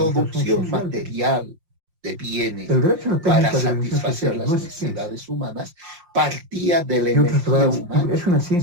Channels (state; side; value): late; left; 5.7 ms